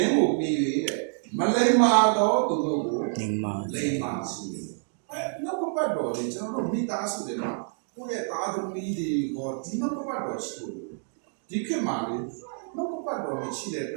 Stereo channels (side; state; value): left; silent; digital silence